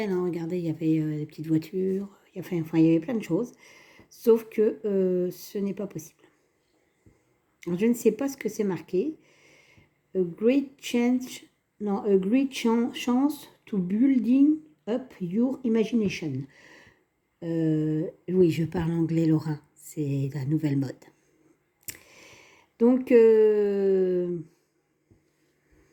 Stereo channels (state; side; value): identical; both; correlation 1.00